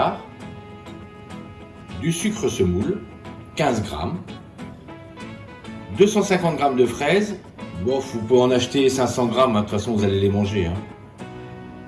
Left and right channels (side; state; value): both; identical; correlation 1.00